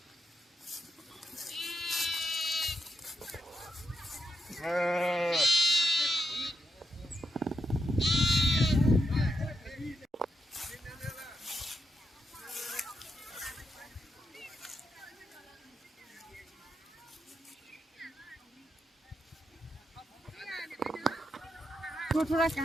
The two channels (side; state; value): both; normal; correlation 0.83